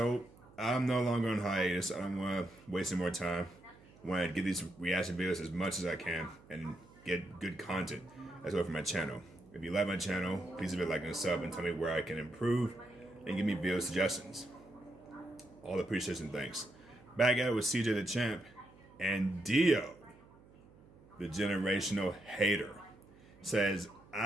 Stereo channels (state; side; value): noise; right; hum, 24 dB below the sound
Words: I'm no longer on hiatus. I don't want to waste any more time. I want to get these reaction videos as much as I can and get good content as well for my channel. If you like my channel, please leave a like and a sub and tell me where I can improve and give me video suggestions. All appreciation, thanks. Back at it with CJ the Champ and DIO, the generational hater, says,